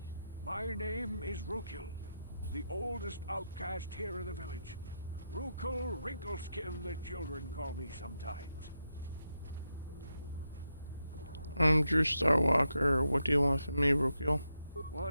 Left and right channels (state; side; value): inverted; both; correlation -0.85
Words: My name is Rukil, the oldest outcast here in the village. Rukil Wrinkleskin, the children call me sometimes. I'm Drew Starwalker. What do you want from me, Rukil?